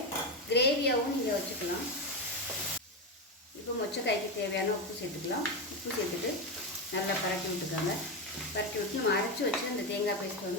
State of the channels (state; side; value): normal; both; correlation 0.13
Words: கிரேவியாகவும் நீங்கள் வச்சுக்கலாம். இப்போ மொச்சக்காய்க்கு தேவையான உப்பு சேர்த்துக்கலாம். உப்பு சேர்த்துட்டு நல்லா பரட்டி விட்டுக்காங்க. பரட்டி விட்டு நம்ம அரைச்சி வச்சு அந்த தேங்காய் பேஸ்ட்